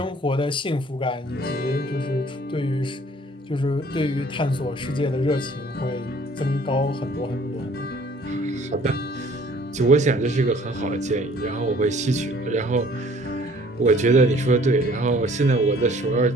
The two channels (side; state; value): both; normal; correlation 0.55